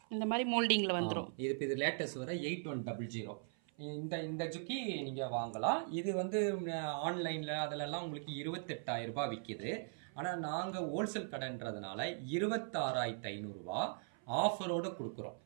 இந்த மாரி மோல்டிங்ல வந்துரும். இது லேட்டஸ்ட் வர 8100. இந்த இந்த ஜுக்கி நீங்கள் வாங்கலாம். இது வந்து ஆன்லைனில் அதிலெல்லாம் உங்களுக்கு 28,000 ரூபாய் விற்கிது. ஆனால் நாங்கள் ஹோல்சேல் கடைன்றதுனால 26,500 ஆஃபரோடு கொடுக்குறோம்.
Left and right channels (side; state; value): left; silent; 51 dB below the other